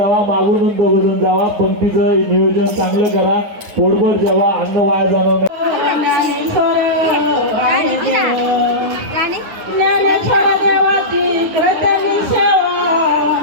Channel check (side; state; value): left; late; 9.6 ms